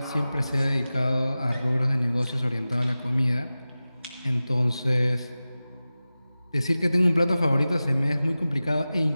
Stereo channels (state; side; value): inverted; both; correlation -0.96